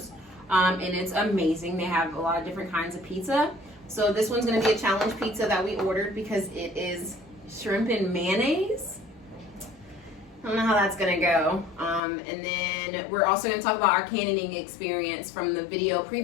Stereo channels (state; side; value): drops out; right; at 12.0 s